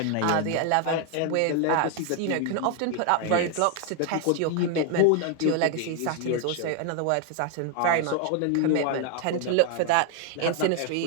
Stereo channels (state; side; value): different; both; correlation 0.00